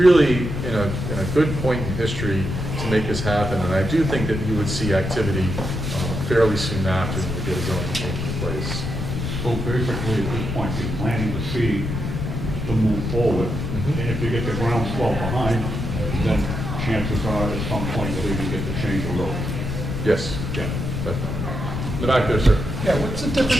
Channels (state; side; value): noise; left; rumble, 3 dB below the sound